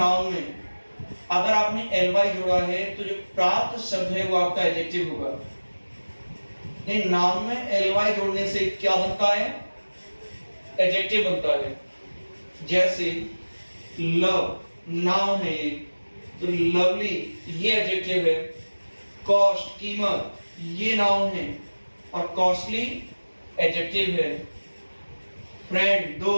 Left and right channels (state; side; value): inverted; both; correlation -1.00